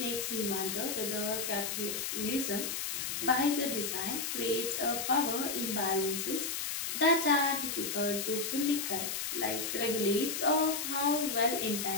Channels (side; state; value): left; noise; hiss, 2 dB below the sound